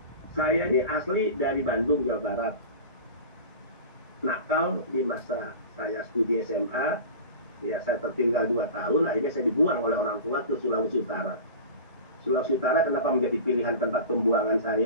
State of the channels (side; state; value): both; inverted; correlation -0.33